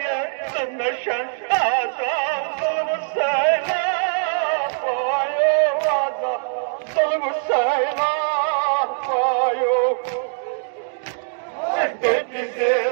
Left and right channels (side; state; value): left; silent; digital silence